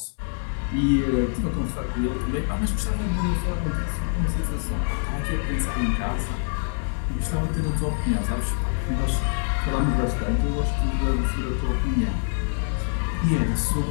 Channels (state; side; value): silent; right; 62 dB below the other